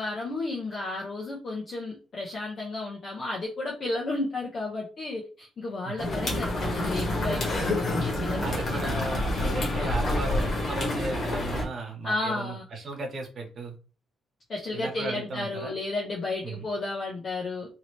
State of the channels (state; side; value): normal; both; correlation 0.78